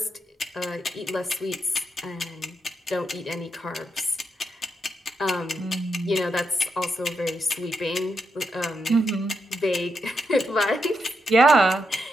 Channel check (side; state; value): both; normal; correlation 0.82